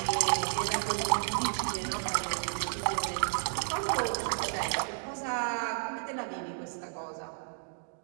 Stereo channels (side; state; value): left; silent; digital silence